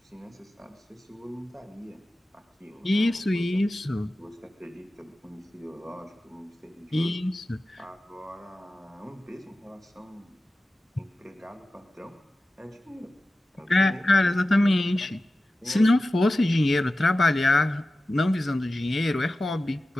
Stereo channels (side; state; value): both; normal; correlation 0.95